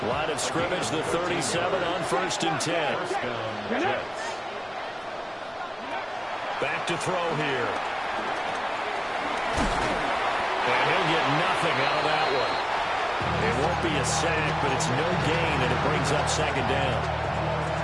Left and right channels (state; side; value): identical; both; correlation 1.00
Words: Line of scrimmage, the 37 on 1st and 10. Back to throw here. And he'll get nothing out of that one. It won't be a sack, but it's no gain, and it brings up 2nd down.